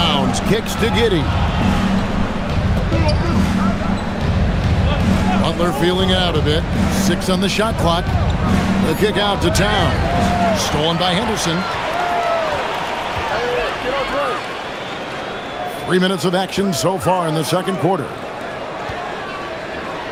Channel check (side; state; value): both; identical; correlation 1.00